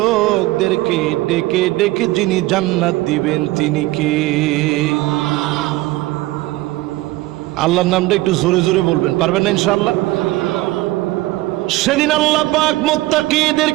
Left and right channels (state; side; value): quieter; left; 18.8 dB